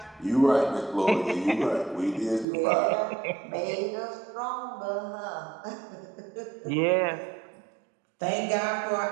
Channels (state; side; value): drops out; left; at 2.5 s